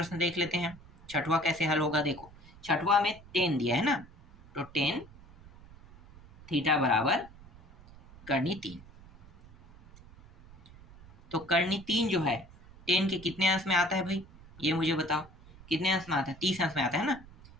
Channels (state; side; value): noise; right; rumble, 22 dB below the sound